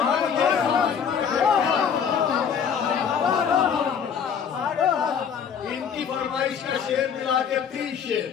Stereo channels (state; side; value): quieter; right; 7.3 dB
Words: شعر ملا کے 3 شعر